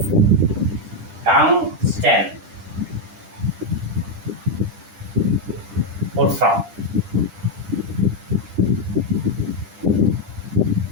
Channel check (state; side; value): late; left; 10 ms